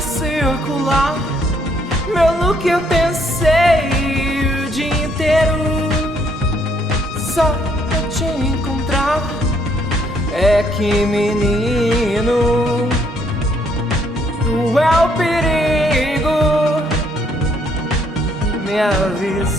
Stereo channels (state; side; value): normal; both; correlation 0.68